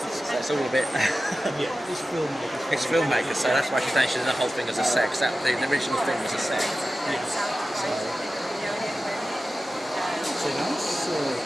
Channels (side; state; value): both; normal; correlation 0.94